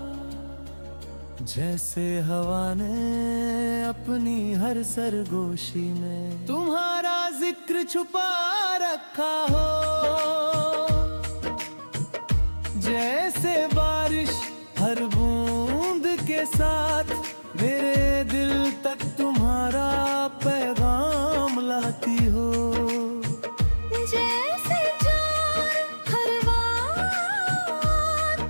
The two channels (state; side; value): inverted; both; correlation -1.00